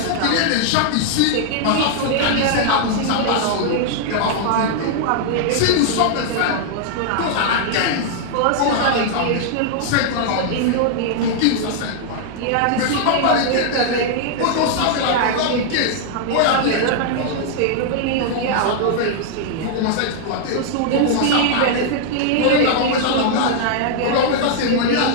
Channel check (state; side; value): different; both; correlation -0.01